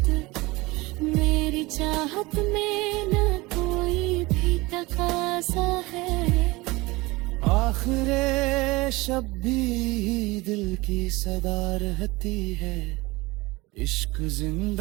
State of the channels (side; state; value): left; quieter; 22.2 dB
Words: मेरी चाहत में न कोई भी तकाजा है। आखिरे शब भी दिल की सदा रहती है। इश्क